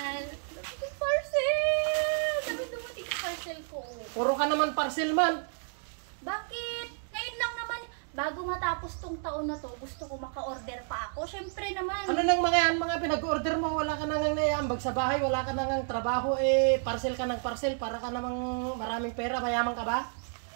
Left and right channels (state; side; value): silent; left; 57 dB below the other